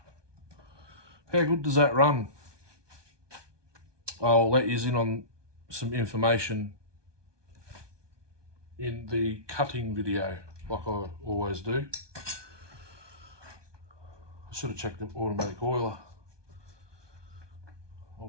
good does that run? I'll let you in on some information in the cutting video, like I always do. I should have checked the automatic oiler. I'll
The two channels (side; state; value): left; late; 1.2 ms